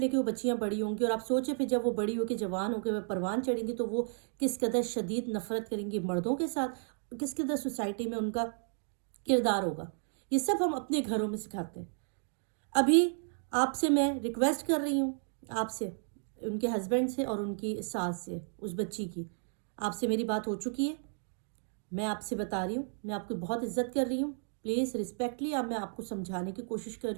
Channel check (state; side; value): silent; left; 56 dB below the other